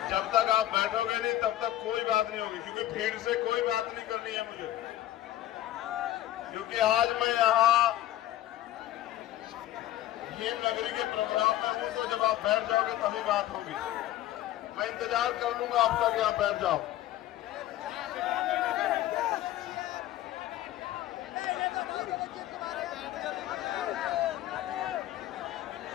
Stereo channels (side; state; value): right; quieter; 13.7 dB